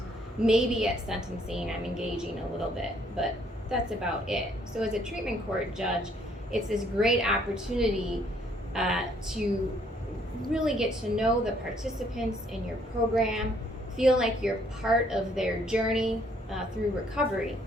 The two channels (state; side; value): normal; both; correlation 0.66